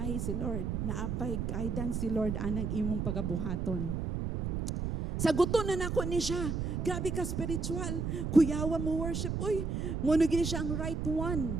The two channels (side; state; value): right; noise; rumble, 2 dB below the sound